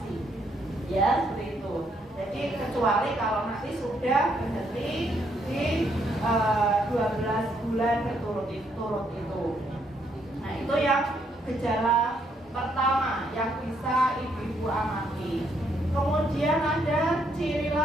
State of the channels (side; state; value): both; normal; correlation 0.73